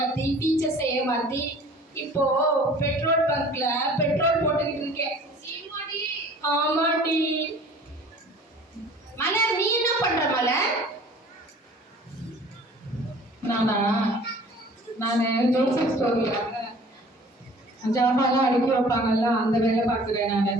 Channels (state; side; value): normal; both; correlation 0.48